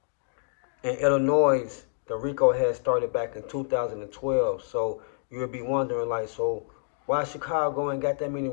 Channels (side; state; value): right; silent; digital silence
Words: in Illinois, the RICO had started back in 2012. So you'll be wondering, like, so why Chicago ain't got that many